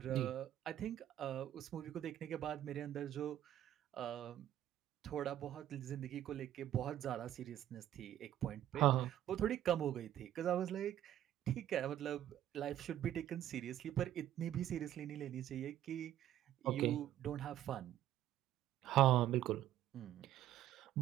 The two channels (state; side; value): quieter; left; 12.2 dB